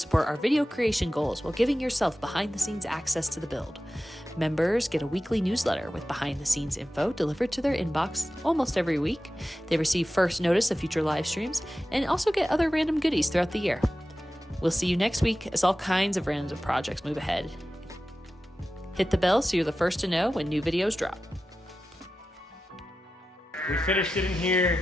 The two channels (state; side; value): normal; both; correlation 0.93